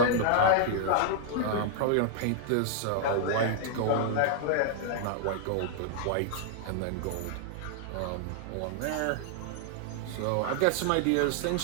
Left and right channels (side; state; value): both; different; correlation -0.01